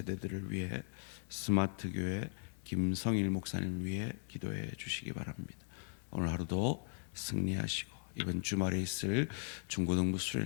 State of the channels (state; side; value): silent; right; digital silence